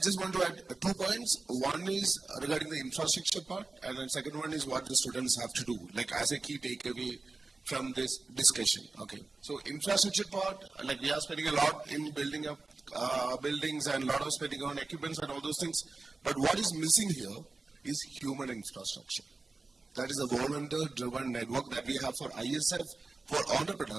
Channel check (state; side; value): quieter; left; 3.7 dB